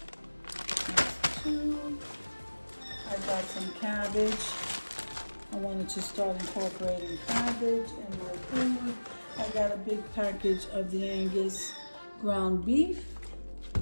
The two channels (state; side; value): inverted; both; correlation -1.00